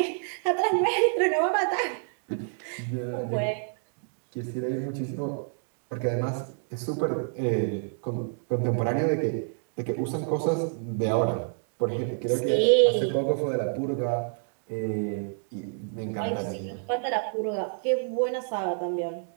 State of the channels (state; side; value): silent; left; 59 dB below the other